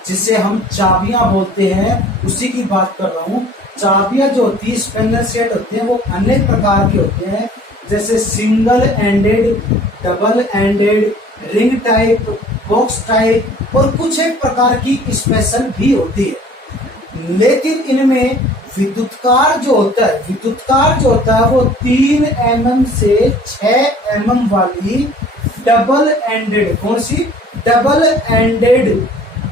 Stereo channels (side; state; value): both; normal; correlation 0.50